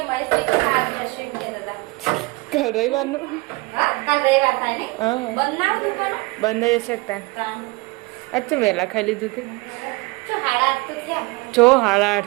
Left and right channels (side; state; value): left; quieter; 24.9 dB